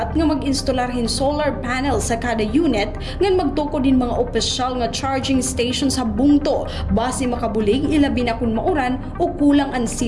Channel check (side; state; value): both; identical; correlation 1.00